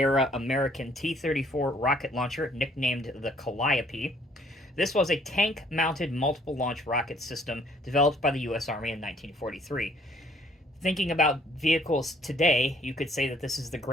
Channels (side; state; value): both; normal; correlation 0.61